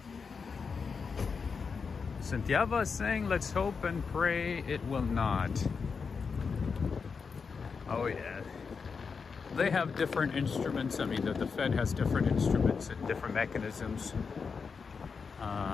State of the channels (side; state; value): right; quieter; 5.4 dB